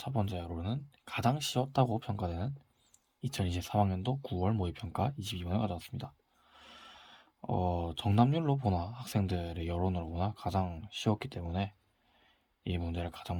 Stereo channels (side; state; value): both; identical; correlation 1.00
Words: 번째로는 가장 쉬웠다고 평가되는 2023학년도 9월 모의평가 22번을 가져왔습니다. 정답률로 보나 학생들의 여론으로 보나 가장 쉬웠기 때문에 이 문제를 가장